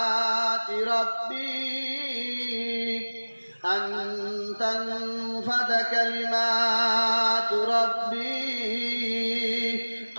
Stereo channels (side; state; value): both; inverted; correlation -1.00